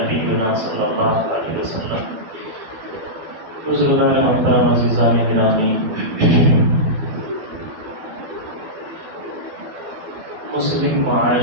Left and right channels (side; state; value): left; late; 12 ms